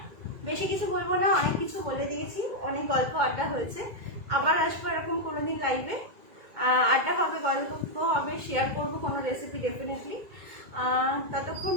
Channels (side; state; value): left; late; 2.2 ms